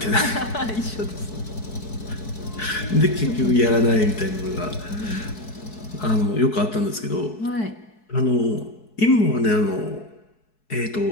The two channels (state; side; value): late; right; 4.6 ms